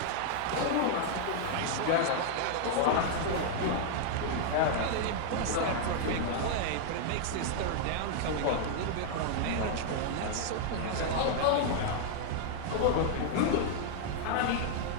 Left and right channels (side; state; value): both; different; correlation 0.00